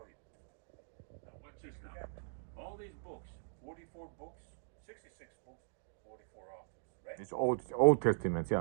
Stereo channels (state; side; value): silent; left; digital silence